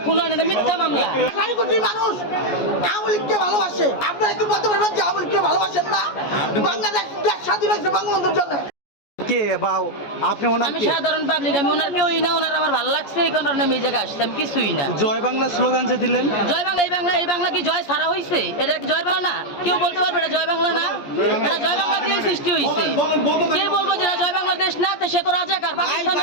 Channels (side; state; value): right; late; 14 ms